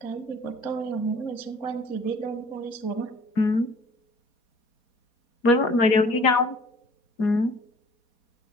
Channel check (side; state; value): right; late; 4.2 ms